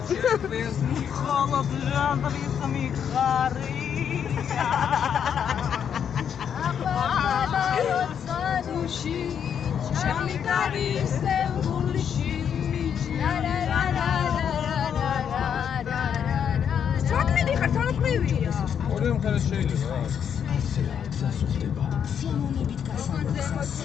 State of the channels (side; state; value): right; quieter; 8.1 dB